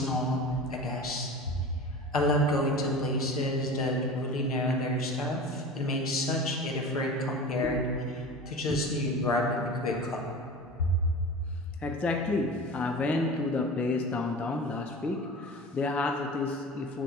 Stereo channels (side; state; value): both; normal; correlation 0.34